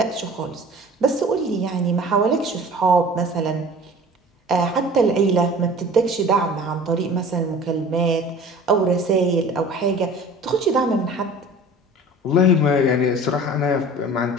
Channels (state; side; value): normal; both; correlation 0.43